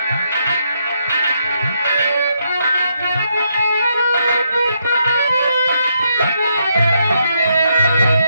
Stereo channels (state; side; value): inverted; both; correlation -0.77